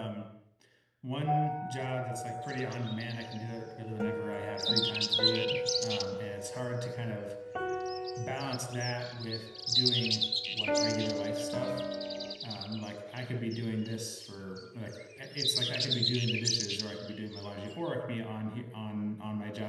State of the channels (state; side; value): identical; both; correlation 1.00